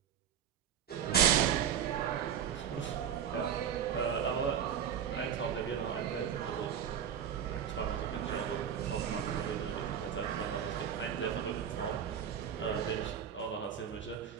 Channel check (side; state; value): left; quieter; 8.6 dB